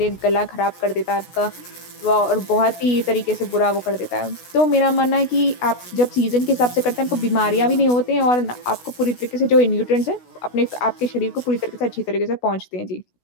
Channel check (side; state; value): right; late; 16 ms